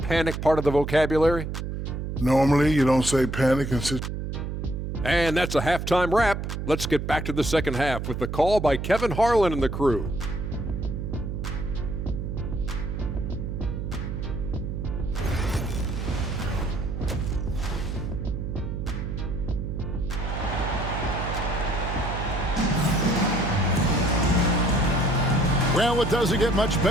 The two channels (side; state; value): right; noise; hum, 4 dB below the sound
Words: part of the vocabulary? Normally, you don't say panic and sit. And that's a halftime wrap. Let's get back to the second half with the call by Kevin Harlan and the crew. Well, it doesn't get much